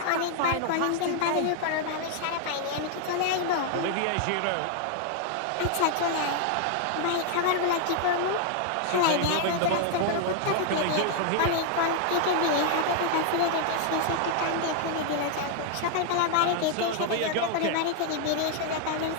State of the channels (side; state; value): both; different; correlation 0.00